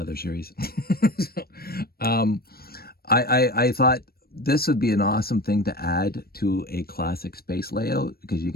other series. So, I thought this would be an awesome thing to add to a Classic Space layout, because you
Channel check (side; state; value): right; late; 0.44 ms